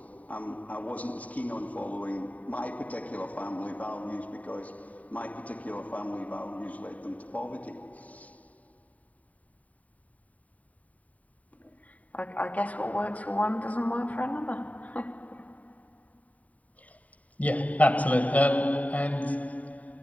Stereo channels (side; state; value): right; late; 0.070 ms